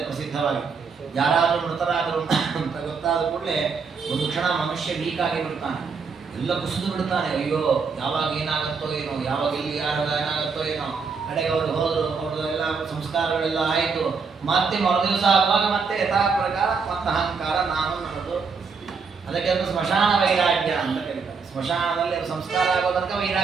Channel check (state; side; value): quieter; left; 5.2 dB